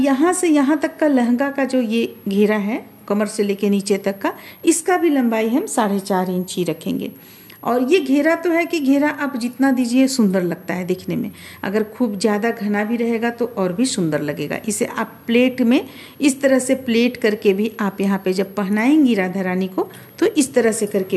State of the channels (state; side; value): identical; both; correlation 1.00